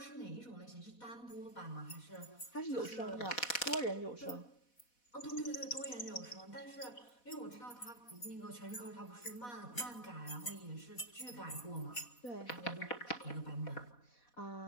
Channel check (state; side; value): late; right; 4.1 ms